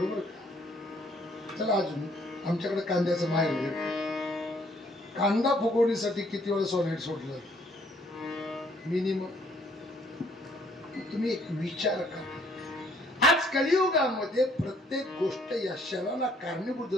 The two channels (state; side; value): normal; both; correlation 0.64